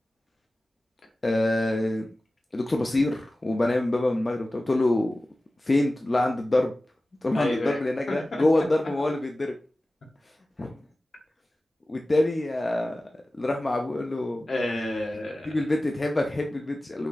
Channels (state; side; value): normal; both; correlation 0.96